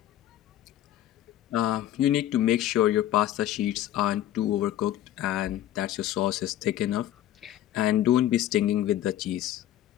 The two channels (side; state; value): right; quieter; 12.8 dB